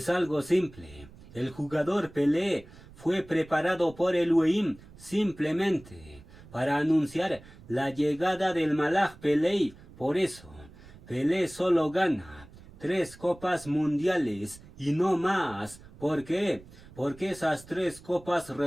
algo simple. El jugador Pelé fue preparado por Elohim simplemente para anunciar la llegada del malaj Pelé. Por eso, Pelé solo gana 3 copas mundiales y no más. ¿Por qué? Porque esas 3 copas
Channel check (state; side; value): noise; right; rumble, 21 dB below the sound